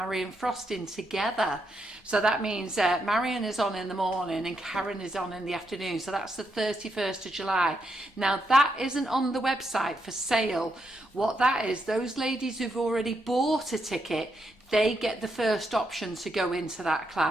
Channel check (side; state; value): both; normal; correlation 0.80